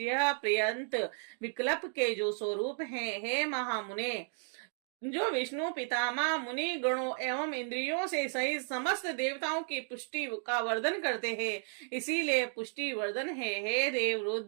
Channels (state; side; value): silent; left; 55 dB below the other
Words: पर्यंत विकल्प के जो स्वरूप हैं। हे महामुने, जो विष्णु पितामह मुनि गणों एवं इंद्रियों से सहित समस्त देवताओं की पुष्टि का वर्धन करते हैं, इसीलिए पुष्टि वर्धन है। हे देव,